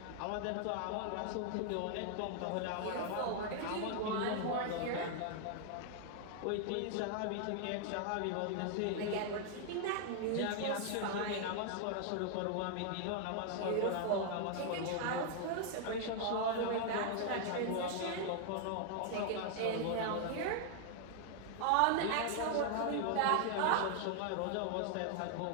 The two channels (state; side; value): different; both; correlation 0.00